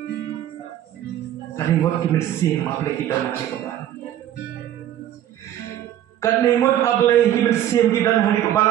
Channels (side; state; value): left; quieter; 11.7 dB